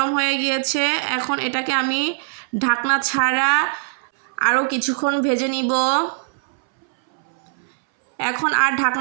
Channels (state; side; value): silent; left; 62 dB below the other